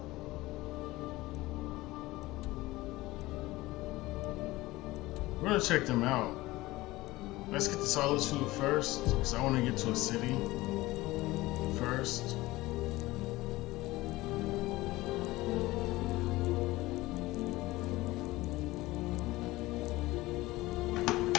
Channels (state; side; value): quieter; right; 19.1 dB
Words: We're gonna check them out. Let's get to Solitude first, because I want to get to a city first.